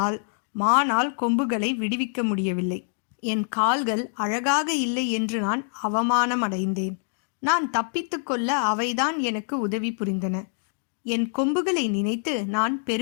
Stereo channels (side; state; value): right; silent; 61 dB below the other